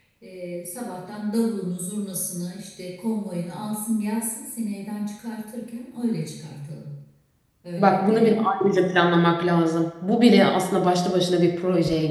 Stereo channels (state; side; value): identical; both; correlation 1.00